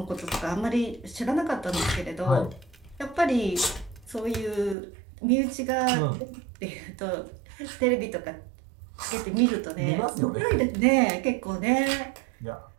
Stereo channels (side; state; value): left; drops out; at 4.8 s